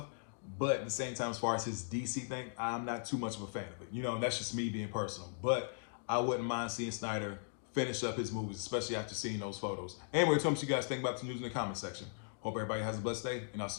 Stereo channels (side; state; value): right; silent; digital silence